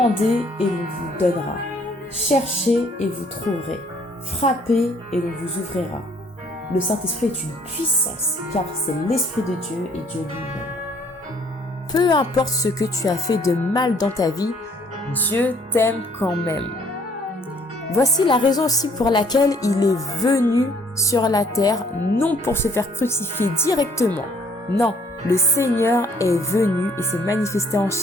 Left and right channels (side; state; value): both; normal; correlation 0.62